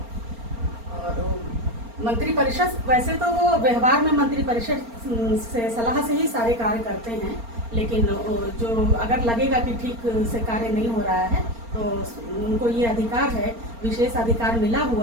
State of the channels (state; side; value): late; left; 4.3 ms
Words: और मंत्रिपरिषद, वैसे तो वो व्यवहार में मंत्रिपरिषद से सलाह से ही सारे कार्य करते हैं, लेकिन जो अगर लगेगा कि ठीक से कार्य नहीं हो रहा है तो उनको ये अधिकार है, विशेष अधिकार मिला